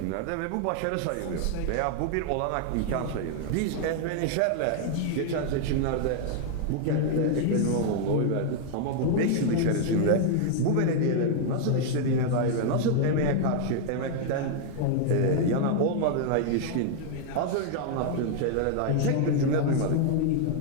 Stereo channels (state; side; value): different; both; correlation 0.00